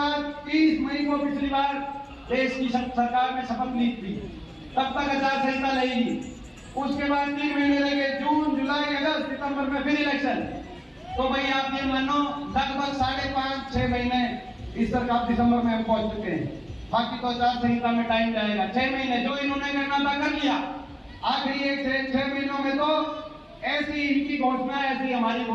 30 मई को पिछली बार देश की सरकार ने शपथ ली थी, तब तक आचार संहिता लगेगी। उसके बाद 3 महीने रह गए, जून, जुलाई, अगस्त, सितंबर में फिर इलेक्शन। तो भाई आप ये मानो लगभग 5.5-6 महीने इस सरकार दिसंबर में हम पहुंच चुके हैं। बाकी तो आचार संहिता में टाइम जाएगा। 6 महीने जो इन्होंने करना था कर लिया। आखिरी एक 6 महीनों में तो ऐसी इनकी घोषणा है, ऐसी हमारी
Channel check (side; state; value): both; identical; correlation 1.00